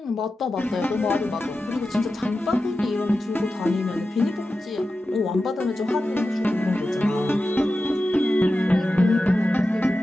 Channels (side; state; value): both; normal; correlation 0.92